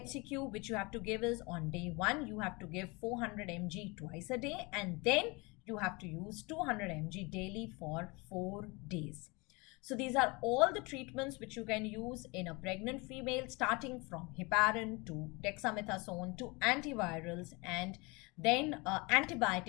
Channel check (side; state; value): right; quieter; 26.7 dB